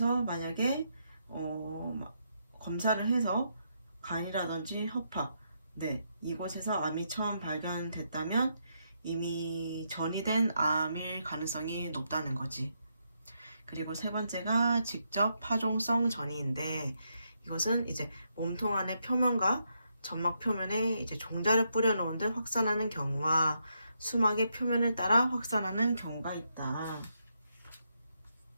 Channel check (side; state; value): both; inverted; correlation -0.79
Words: 만약에 검사를 해서 간이라든지 허파, 이곳에서 암이 처음 발견됐다면 이미 전이된 암일 가능성이 높다는 거지. 그리고 세 번째가 직접 파종성 전이인데, 이것은 이제 몸통 안의 표면과 점막 표면에 이제 종자를 뿌려놓은 듯 확산하는 경우와 수막의 표면을 따라 확산하는 경우가 있다.